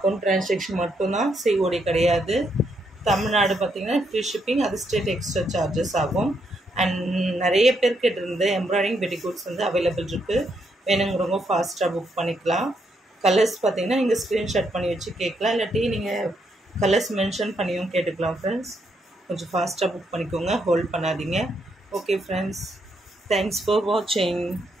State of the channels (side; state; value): both; normal; correlation 0.77